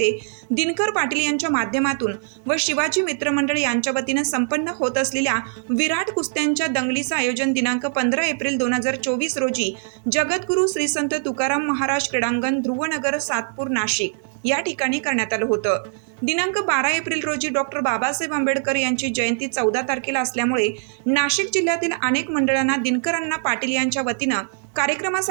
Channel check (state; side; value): silent; left; 64 dB below the other